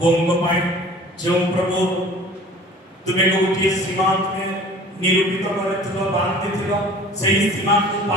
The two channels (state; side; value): normal; both; correlation 0.46